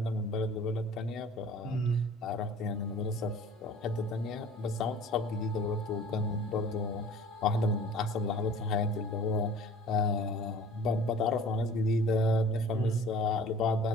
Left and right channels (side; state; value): both; normal; correlation 0.46